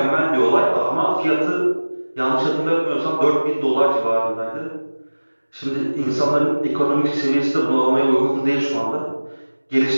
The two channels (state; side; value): inverted; both; correlation -1.00